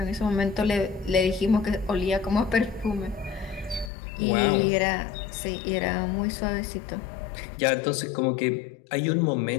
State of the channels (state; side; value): drops out; right; at 3.9 s